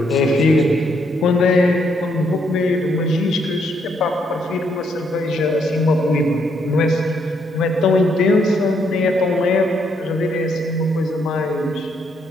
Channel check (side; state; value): both; normal; correlation 0.74